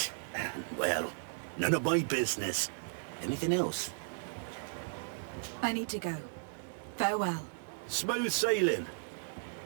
Well, none of my business. Anything else? I need to go. Farewell. Smooth sailing.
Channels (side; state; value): left; silent; digital silence